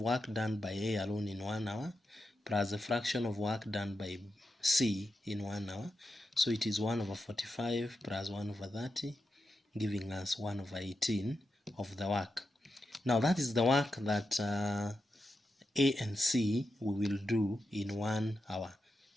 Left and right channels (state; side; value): normal; both; correlation 0.88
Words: done by A alone in 1 hour plus the fraction of work done by C in 1 hour. So it is 1/45 plus 1/30, giving us 1/18 of the work. Now that is the work that A and C we will do in 1 hour.